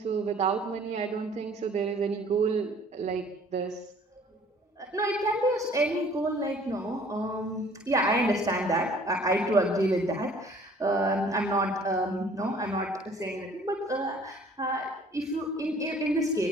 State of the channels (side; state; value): both; normal; correlation 0.54